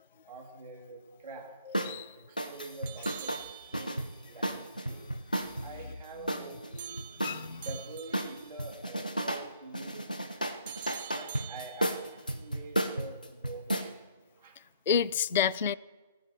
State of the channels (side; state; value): both; inverted; correlation -0.60